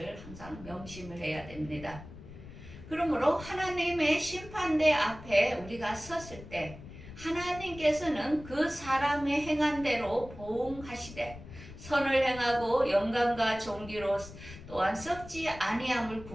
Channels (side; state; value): left; noise; rumble, 15 dB below the sound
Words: 항상 명심을 해야 됩니다. 그러므로 하나님의 심판대 앞에 우리가 섰을 때 하나님께서는 그 사람의 행한 대로 보응하시되 선을 행하고 영광과 존귀로 또한 썩지 아니함을